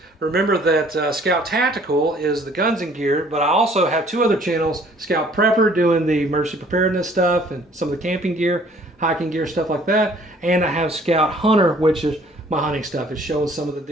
Remember that Scout Tactical is the guns and gear, but I also have two other channels. Scout Prepper doing the emergency preparedness stuff and some of the camping gear, hiking gear, stuff like that. And I have Scout Hunter, which is my hunting stuff. It's showing some of the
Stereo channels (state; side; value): normal; both; correlation 0.57